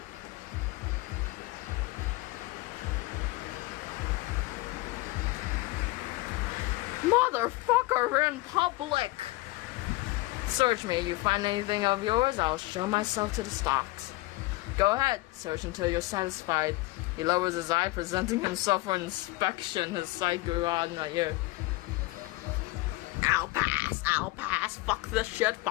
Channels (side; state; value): right; quieter; 21.2 dB